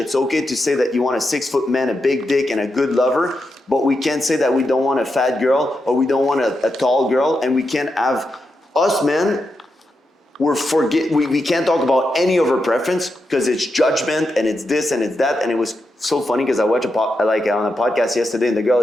okay to say that you want a 6-foot man, a big dick, and a good lover. But we can't say that we don't want a fat girl or we don't want a tall girl. And we can't have us men. We can't talk about any of our preference because it's judgment and it's this and it's that. And it was so funny because I watched on a podcast yesterday, and the girl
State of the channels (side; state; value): both; normal; correlation 0.86